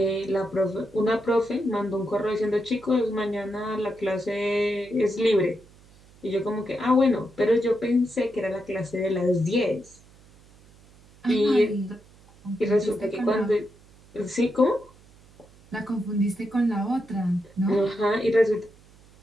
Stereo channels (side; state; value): right; noise; hum, 26 dB below the sound